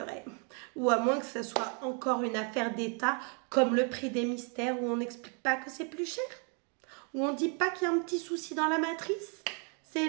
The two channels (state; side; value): quieter; left; 38.6 dB